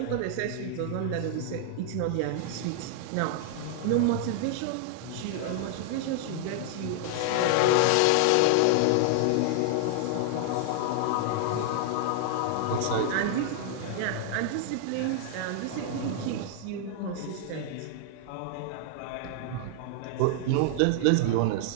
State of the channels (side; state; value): both; different; correlation 0.00